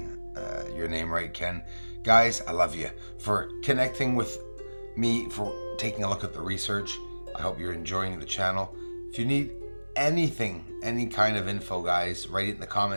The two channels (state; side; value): inverted; both; correlation -1.00